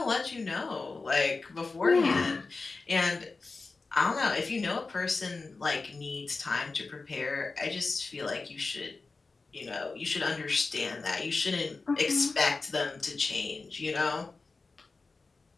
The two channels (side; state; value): right; quieter; 3.9 dB